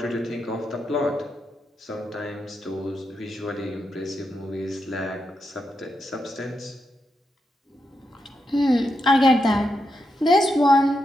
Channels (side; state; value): both; normal; correlation 0.84